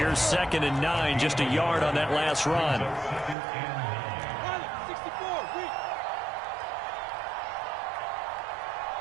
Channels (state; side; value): drops out; left; at 3.4 s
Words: 2nd and 9, just a yard on that last run.